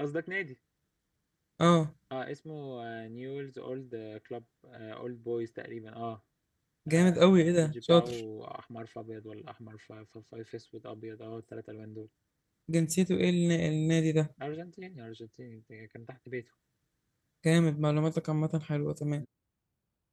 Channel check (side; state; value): both; identical; correlation 1.00